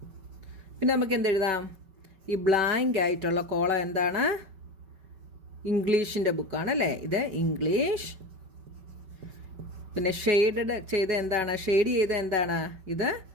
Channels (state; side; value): late; left; 5.2 ms